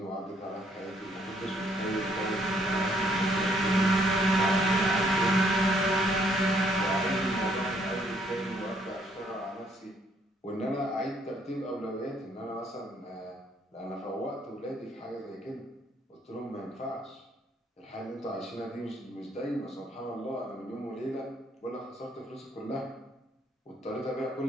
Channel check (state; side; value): normal; both; correlation 0.67